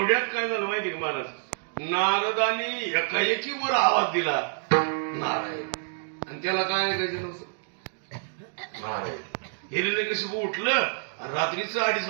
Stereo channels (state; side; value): silent; left; digital silence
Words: काय झालं माहिती का महाराज? नारदाने एकाएकी वर आवाज दिला नारायण, आणि त्याला काय ऐकायचं नव्हतं. नारायण. हिरण्यकशिपू उठलं आणि रात्रीचं 2:30